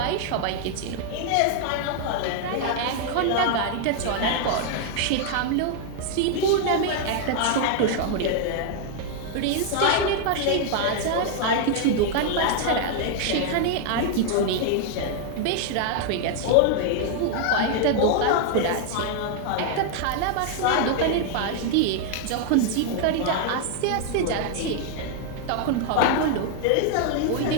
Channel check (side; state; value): both; different; correlation 0.00